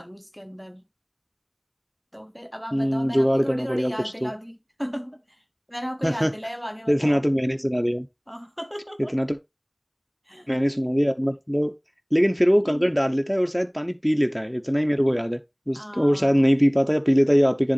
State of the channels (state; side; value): identical; both; correlation 1.00